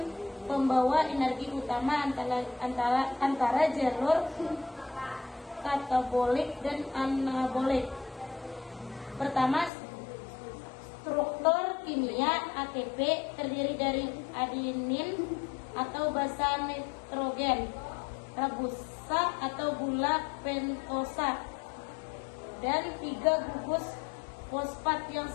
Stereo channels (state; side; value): drops out; right; at 9.7 s